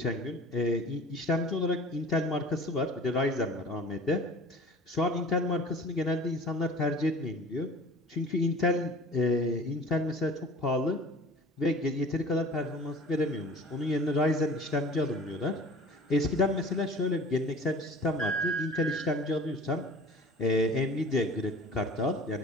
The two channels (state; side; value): normal; both; correlation 0.43